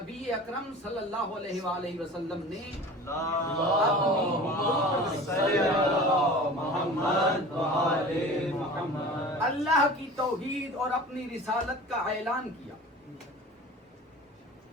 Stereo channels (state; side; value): normal; both; correlation 0.39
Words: اکرم صلی اللہ علیہ وآلہ وسلم نے اللہ کی توحید اور اپنی رسالت کا اعلان کیا،